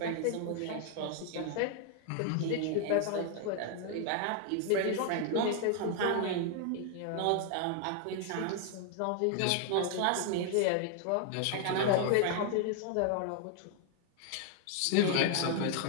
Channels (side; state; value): both; different; correlation 0.00